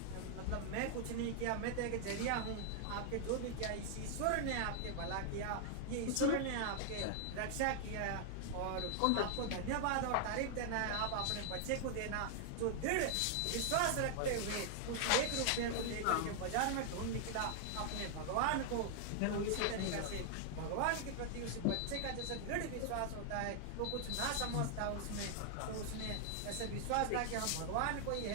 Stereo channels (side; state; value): both; different; correlation 0.00